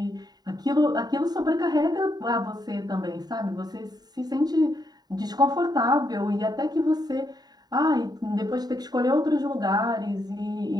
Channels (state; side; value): late; left; 0.20 ms